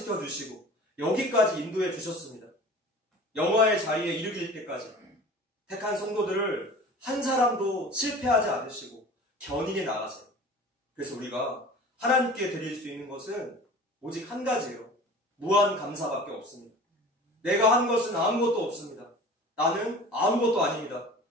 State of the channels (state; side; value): normal; both; correlation 0.41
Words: 주시고 여기까지 인도해 주셨습니다. 영화의 자리에 이르길 때까지 택한 성도들을 한 사람도 실패하지 않으시고 견인해 나가세요. 그래서 우리가 하나님께 드릴 수 있는 것은 오직 한 가지예요. 무한 감사밖에 없습니다. 내가 한 것은 아무것도 없습니다. 나는 아무것도 아닙니다.